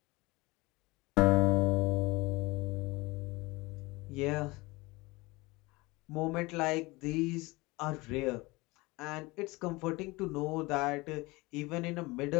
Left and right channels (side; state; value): right; quieter; 23.0 dB